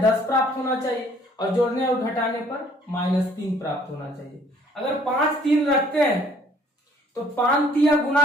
10 प्राप्त होना चाहिए और जोड़ने और घटाने पर -3 प्राप्त होना चाहिए। अगर 5 3 रखते हैं तो 5 3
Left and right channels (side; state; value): both; normal; correlation 0.59